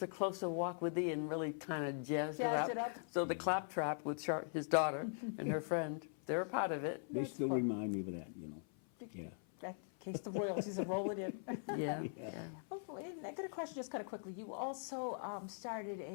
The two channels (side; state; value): right; silent; 50 dB below the other